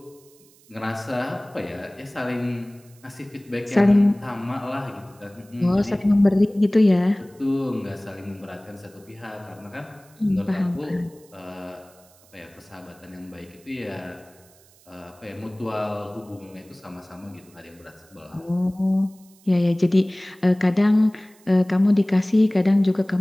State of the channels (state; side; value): noise; right; hiss, 28 dB below the sound